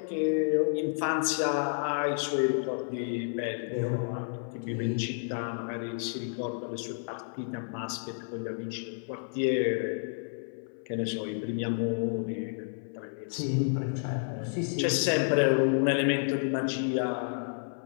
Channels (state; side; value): silent; right; 57 dB below the other